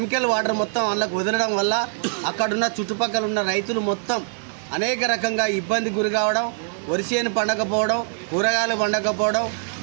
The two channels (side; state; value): left; silent; digital silence